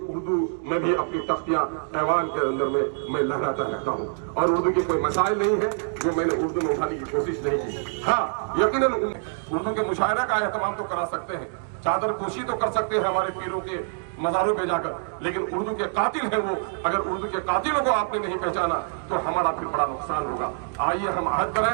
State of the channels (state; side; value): silent; left; digital silence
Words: में भी अपनी तख्तियाँ ऐवान के अंदर में मैं लहराता रहता हूँ, और उर्दू की कोई मसाइल नहीं है जो मैंने उर्दू में उठाने की कोशिश नहीं की। हाँ, यकीनन उर्दू के मुशायरा का एहतमाम तो करा सकते हैं, चादर पोशी तो कर सकते हैं हमारे पीरों के मज़ारों पे जाकर, लेकिन उर्दू के कातिल हैं वो। अगर उर्दू के कातिलों को आपने नहीं पहचाना तो हमारा फिर बड़ा नुकसान होगा। आइए हम अहद करें